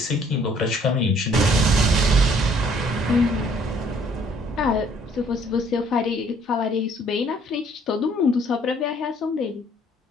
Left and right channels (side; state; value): both; normal; correlation 0.61